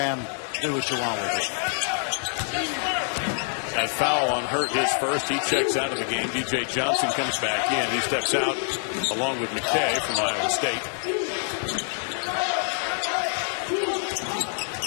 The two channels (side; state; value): right; silent; 61 dB below the other